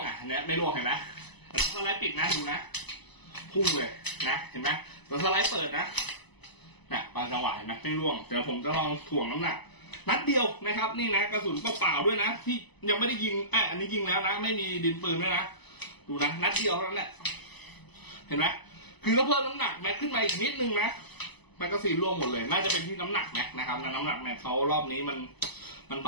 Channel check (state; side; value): late; right; 0.99 ms